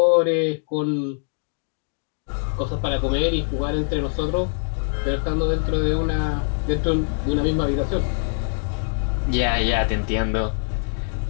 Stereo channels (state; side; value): silent; right; 62 dB below the other